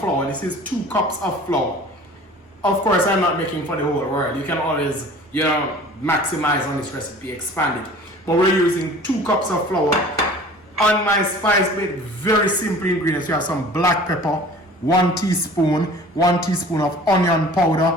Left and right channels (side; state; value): both; normal; correlation 0.45